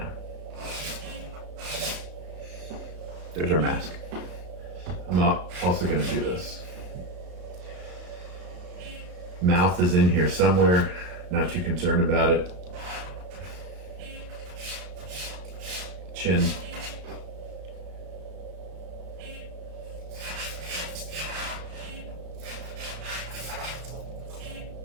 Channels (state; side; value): late; left; 34 ms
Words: There's our mask. I'm also going to do this. Mouth is in here somewhere, not too concerned about it. Chin.